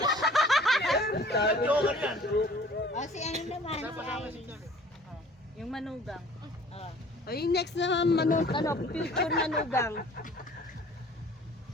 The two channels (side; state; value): both; normal; correlation 0.50